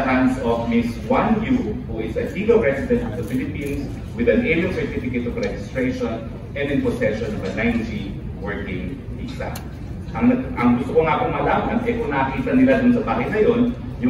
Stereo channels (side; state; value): both; identical; correlation 1.00